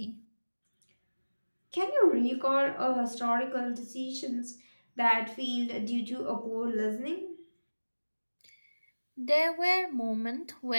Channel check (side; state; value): both; inverted; correlation -1.00